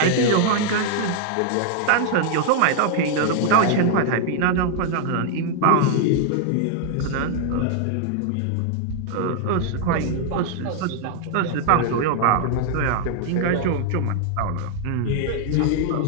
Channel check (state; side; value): different; both; correlation 0.00